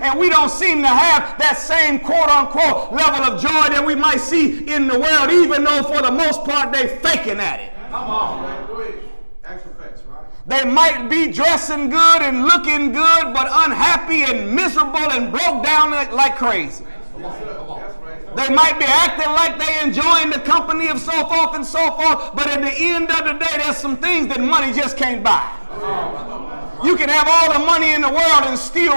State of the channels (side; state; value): both; inverted; correlation -1.00